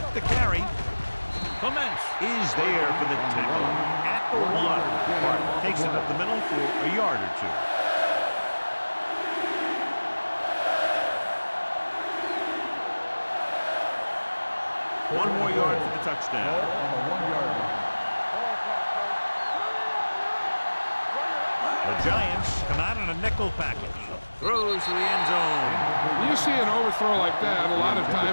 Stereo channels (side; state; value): both; inverted; correlation -1.00